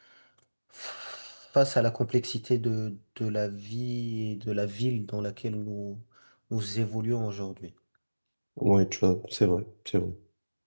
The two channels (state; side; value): inverted; both; correlation -1.00